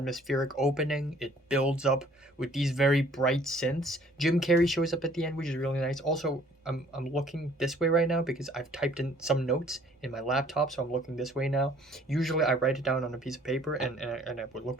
opening. It builds up with these very bright synths. Jim Carrey shows up at the end, which is really nice. Also, I'm looking this way right now because I've typed in some notes in my laptop, so I'm looking this way now. Usually I write it down on a piece of paper and I would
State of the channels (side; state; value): both; normal; correlation 0.57